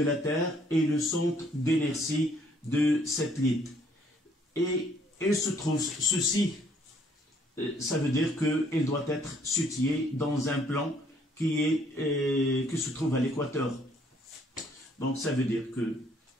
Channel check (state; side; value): normal; both; correlation 0.64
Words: la Terre et le centre d'inertie de satellite. Et il se trouve ceci, ça veut dire qu'il doit être situé dans un plan qui se trouve à l'équateur. Donc ça veut dire que